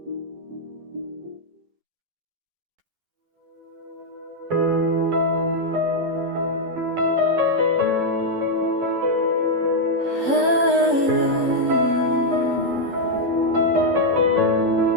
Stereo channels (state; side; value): late; left; 11 ms